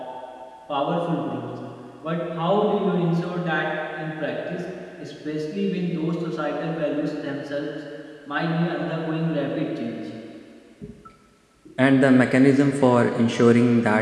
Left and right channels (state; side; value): identical; both; correlation 1.00